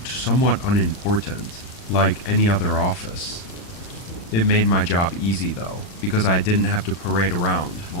somewhat unimportant, like any other office. It made my job easy though, because I didn't have to parade around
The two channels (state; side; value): late; right; 39 ms